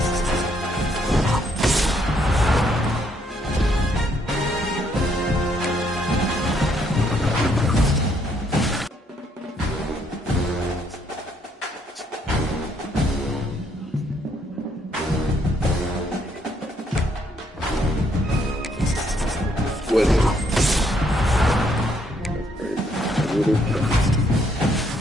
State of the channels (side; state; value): both; normal; correlation 0.71